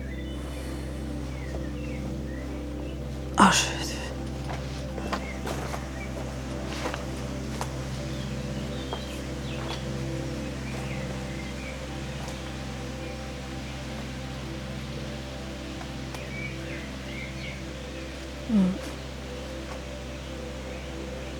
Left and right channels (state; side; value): identical; both; correlation 1.00